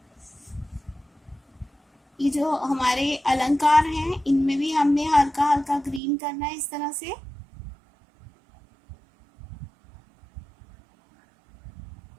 ये जो हमारे अलंकार हैं इनमें भी हमने हल्का हल्का ग्रीन करना है, इस तरह से।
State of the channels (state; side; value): drops out; left; at 6.0 s